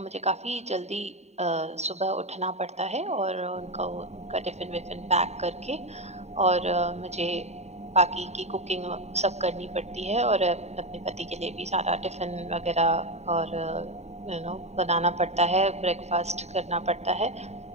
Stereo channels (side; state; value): left; late; 0.32 ms